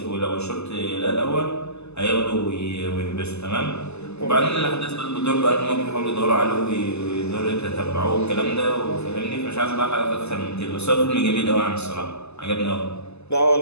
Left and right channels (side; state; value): right; late; 0.80 ms